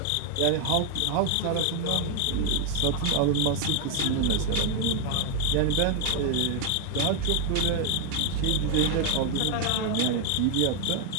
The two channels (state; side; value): different; both; correlation 0.00